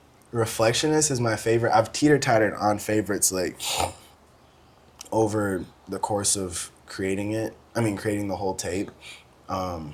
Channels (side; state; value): both; identical; correlation 1.00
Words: Reflectionist is my favorite. I've teeter-tottered on favorites like over the course of creating the whole tape.